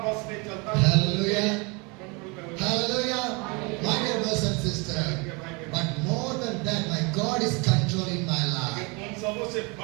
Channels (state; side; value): quieter; left; 29.5 dB